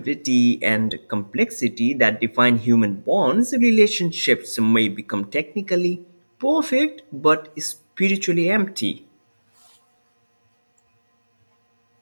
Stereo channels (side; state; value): both; inverted; correlation -1.00